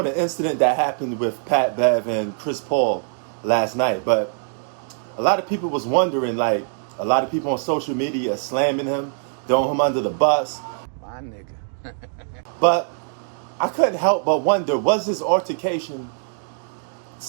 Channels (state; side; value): silent; left; digital silence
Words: the incident that happened with Pat Bev and Chris Paul last night. But a lot of people was wondering, like, a lot of people on social media slamming him, throwing him under the bus. My nigga. But I couldn't help but wonder, was this altercation